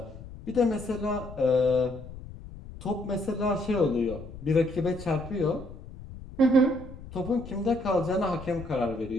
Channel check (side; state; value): left; noise; rumble, 14 dB below the sound